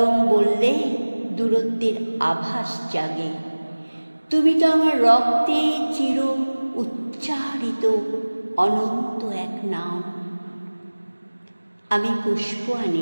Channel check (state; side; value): inverted; both; correlation -1.00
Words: বললে দূরত্বের আভাস জাগে। তুমি তো আমার রক্তে চির উচ্চারিত অনন্ত এক নাম। আমি পুষ্প